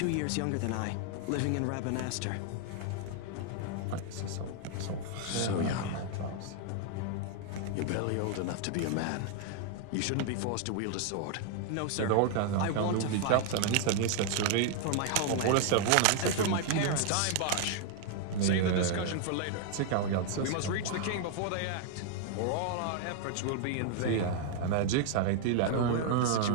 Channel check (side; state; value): both; different; correlation 0.00